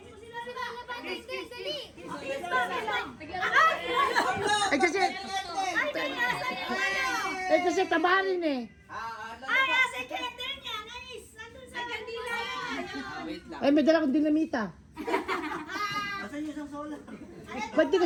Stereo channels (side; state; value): both; identical; correlation 1.00